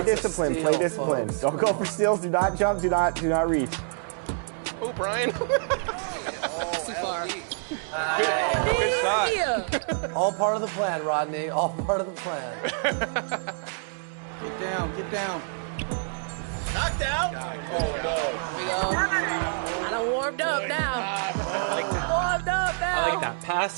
discipline. steal, Play discipline. folks. Don't go for steals. Do not jump. Do not reach. Oh, Brian. Too far. Good shot. All part of the plan, Rodney. All part of the plan. Get down. Get down. Knocked out. Oh, no. Here we go. I done warmed up now. Warmed up now. I like that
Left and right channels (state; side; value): silent; left; digital silence